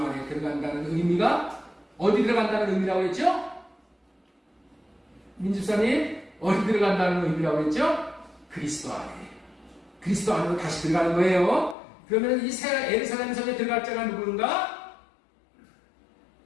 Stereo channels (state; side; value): drops out; right; at 11.8 s